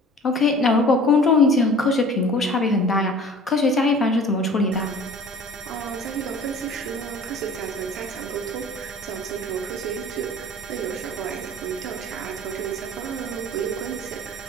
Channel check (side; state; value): both; normal; correlation 0.46